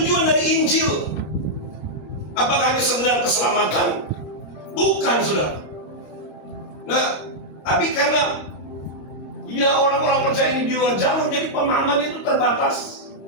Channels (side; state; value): right; late; 26 ms